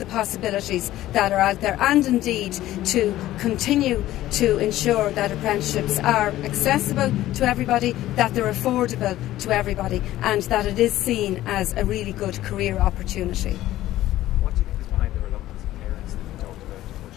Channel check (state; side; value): quieter; right; 14.7 dB